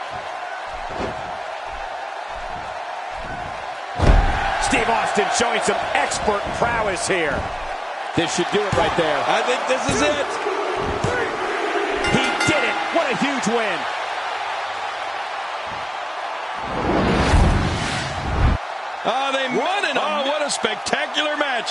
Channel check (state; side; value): identical; both; correlation 1.00